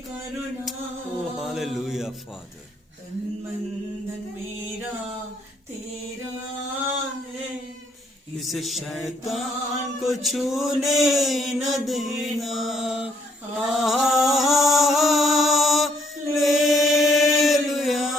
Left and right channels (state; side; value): normal; both; correlation 0.67